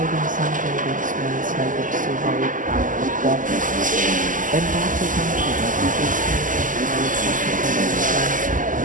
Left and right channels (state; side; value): late; left; 0.38 ms